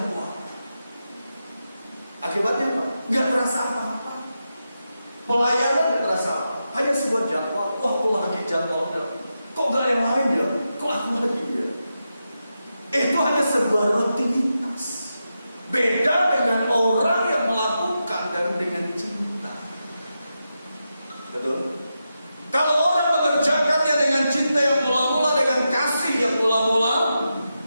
Akibatnya apa? Nggak terasa apa-apa. Pelayanan nggak terasa apa. Hanya sebuah jadwal. Wah, kok lagi jadwalnya? Kok nggak yang lain ya? Kok aku lagi ya? Itu hanya sebuah rutinitas. Beda dengan orang yang melakukan dan dengan cinta. Betul? Kalau orang mengerjakannya dengan cinta yang mula-mula, dengan kasih yang mula-mula,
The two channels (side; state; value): both; inverted; correlation -0.88